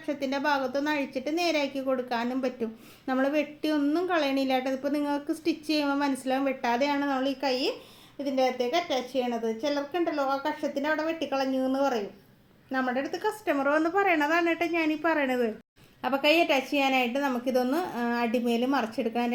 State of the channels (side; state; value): both; identical; correlation 1.00